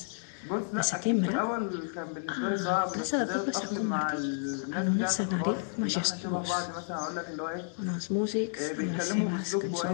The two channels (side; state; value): right; silent; digital silence